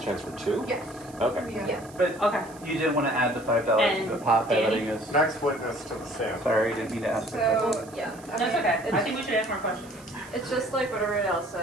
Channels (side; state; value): right; noise; hiss, 22 dB below the sound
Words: chance for 2? Yes. Okay. Yeah. But okay, you didn't want to add the $5 And to the pot by Danny? letting us. Next witness to the stand. Sorry, didn't mean to ask. So, yeah. that's okay. I think we should ask more questions. It's just like what everybody else